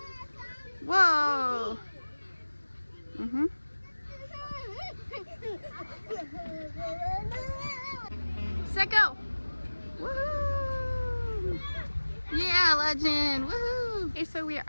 Whoa. Mm-hmm. Set go. Woohoo! Yeah, Legend. Woohoo! Okay, so we are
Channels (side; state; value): both; inverted; correlation -1.00